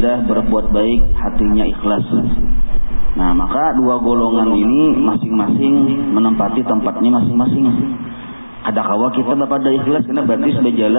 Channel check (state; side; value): inverted; both; correlation -1.00